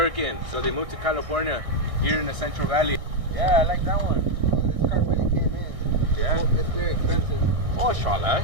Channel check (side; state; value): left; late; 1.6 ms